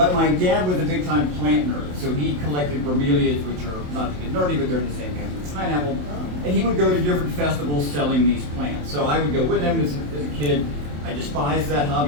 my dad was a big-time plant nerd, so he collected bromeliads, which are, not to get nerdy, but they're in the same family as pineapple. And he would go to different festivals selling these plants. So I would go with him as a kid. I despised that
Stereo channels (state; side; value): late; left; 27 ms